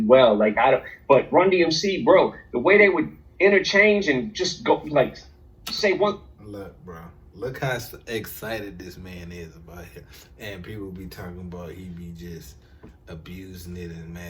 But Run DMC, bro, the way they would interchange and just go like say one. Look, bro. Look how excited this man is about it. And people be talking about he be just abusing it and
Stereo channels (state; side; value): identical; both; correlation 1.00